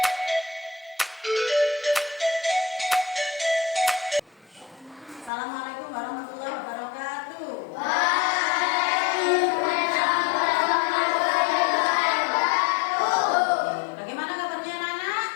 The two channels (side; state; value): right; drops out; at 5.3 s